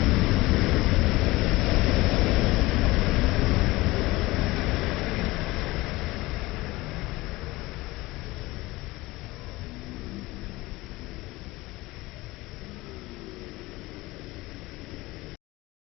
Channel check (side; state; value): right; quieter; 20.2 dB